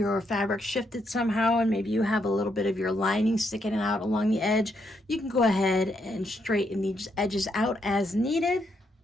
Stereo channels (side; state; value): both; normal; correlation 0.77